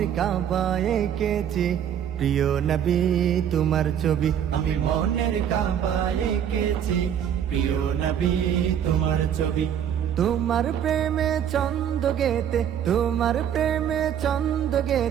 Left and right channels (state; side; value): quieter; left; 9.2 dB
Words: কাবা এঁকেছি প্রিয় নবী তোমার ছবি। আমি মনের কাবা এঁকেছি প্রিয় নবী তোমার ছবি। তোমার প্রেমে ছন্দ গেতে, তোমার প্রেমে ছন্দ